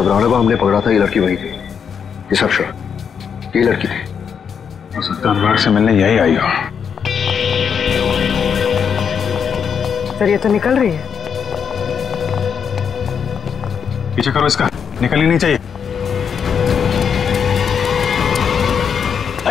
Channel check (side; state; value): right; quieter; 7.1 dB